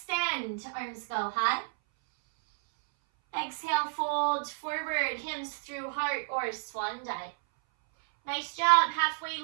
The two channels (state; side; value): silent; left; 57 dB below the other